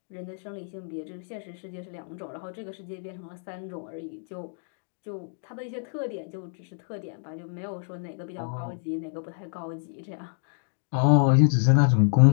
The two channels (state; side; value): silent; right; digital silence